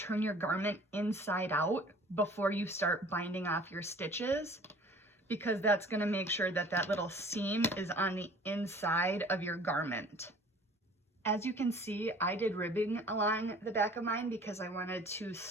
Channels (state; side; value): normal; both; correlation 0.49